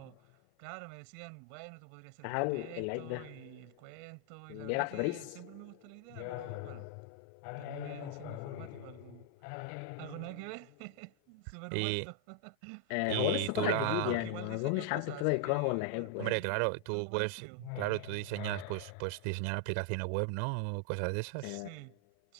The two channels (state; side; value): different; both; correlation 0.00